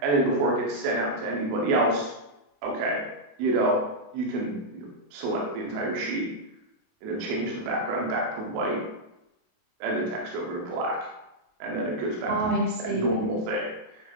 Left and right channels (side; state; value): left; late; 28 ms